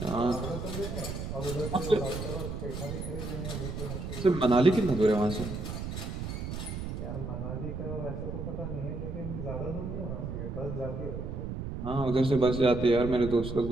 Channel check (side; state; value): right; noise; rumble, 5 dB below the sound